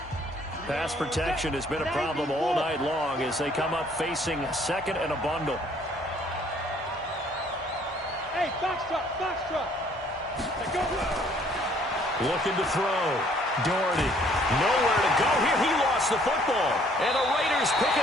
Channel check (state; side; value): normal; both; correlation 0.61